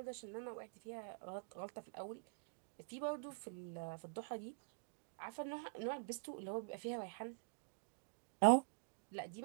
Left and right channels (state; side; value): silent; left; digital silence